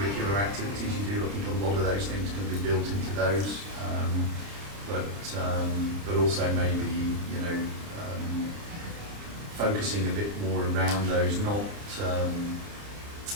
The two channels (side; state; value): left; late; 30 ms